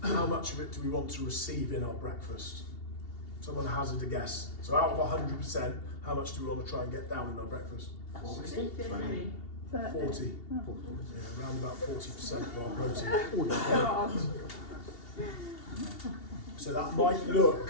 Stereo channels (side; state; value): right; late; 2.8 ms